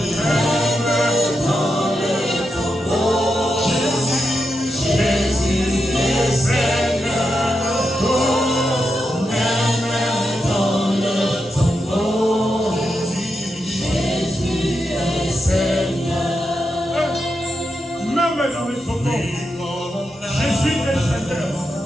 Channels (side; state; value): both; normal; correlation 0.86